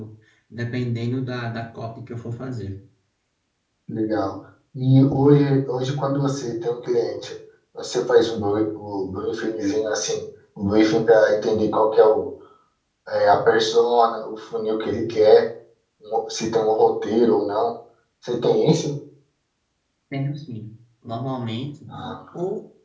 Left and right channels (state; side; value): identical; both; correlation 1.00